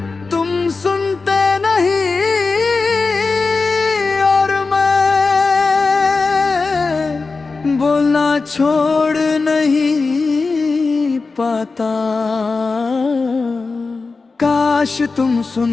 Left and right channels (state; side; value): quieter; right; 4.1 dB